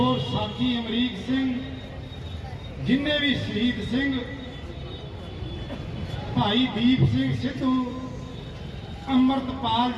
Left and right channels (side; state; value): both; identical; correlation 1.00